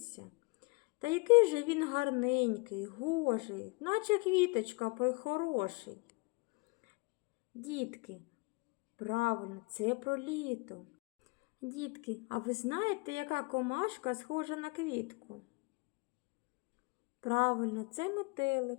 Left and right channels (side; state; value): right; quieter; 28.4 dB